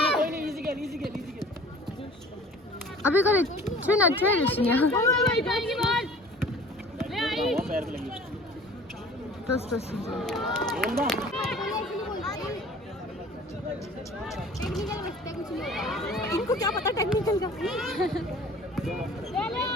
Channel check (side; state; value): both; normal; correlation 0.47